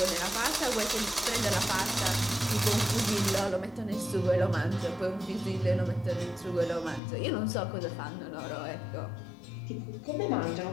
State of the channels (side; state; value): right; drops out; at 7.0 s